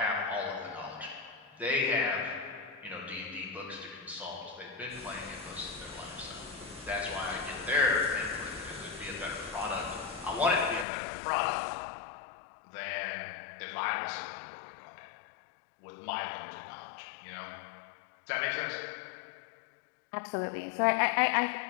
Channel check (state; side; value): drops out; right; at 10.9 s